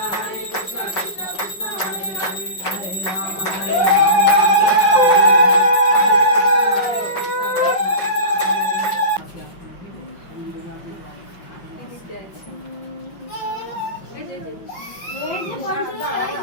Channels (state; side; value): late; right; 5.3 ms